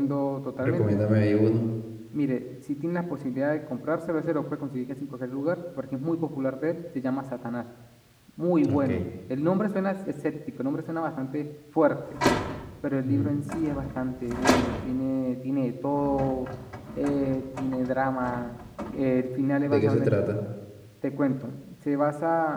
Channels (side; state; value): both; identical; correlation 1.00